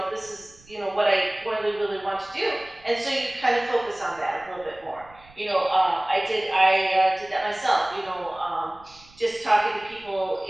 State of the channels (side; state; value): right; noise; rumble, 26 dB below the sound